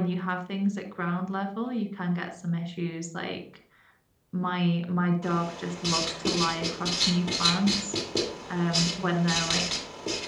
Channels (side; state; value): both; identical; correlation 1.00